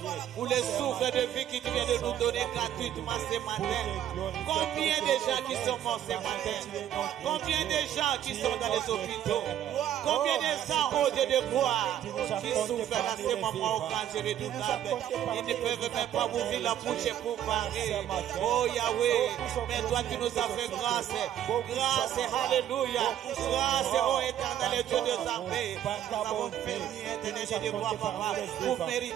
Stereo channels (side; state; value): left; quieter; 10.9 dB